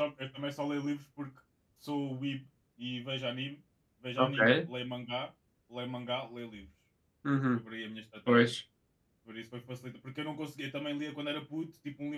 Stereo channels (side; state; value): both; identical; correlation 1.00